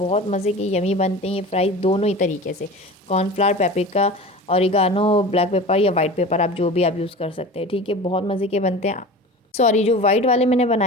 मज़े के यमी बनते हैं ये फ्राइज़ दोनों ही तरीके से, cornflour, paprika, oregano, black pepper या वाइट पेपर आप जो भी आप यूज़ कर सकते हैं। ठीक है, बहुत मज़े के बनते हैं। सॉरी, जो वाइट वाले मैंने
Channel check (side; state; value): both; normal; correlation 0.35